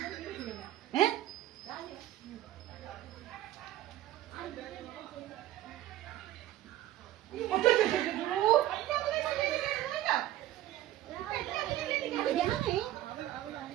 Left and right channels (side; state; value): left; quieter; 14.2 dB